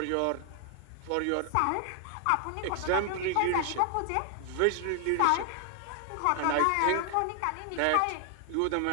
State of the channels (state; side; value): different; both; correlation 0.00